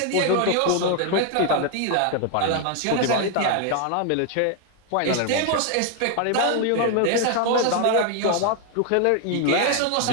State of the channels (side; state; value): both; different; correlation 0.00